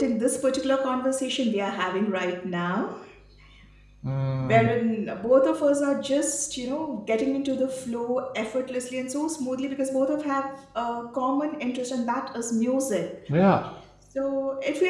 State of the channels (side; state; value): both; identical; correlation 1.00